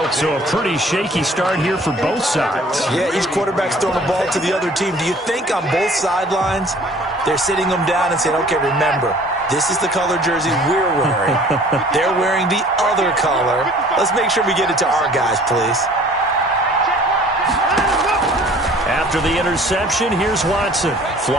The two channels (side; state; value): both; normal; correlation 0.51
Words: So a pretty shaky start here for both sides. Yeah, each quarterback's throwing the ball to the other team. Do you think on both sidelines they're sitting them down and saying, okay, remember, this is the color jersey we're wearing. They're wearing the other color. Let's make sure we get it to our guys, please. After the interception, here's Watson.